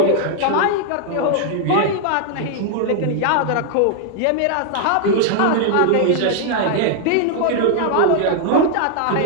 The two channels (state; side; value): different; both; correlation 0.00